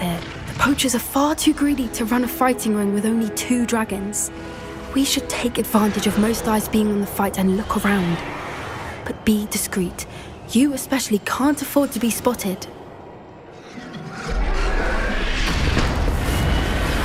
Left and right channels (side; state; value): both; identical; correlation 1.00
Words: The poachers are far too greedy to run a fighting ring with only 2 dragons. We should take advantage of most eyes being on the fight and look around. But be discreet. You especially can't afford to be spotted.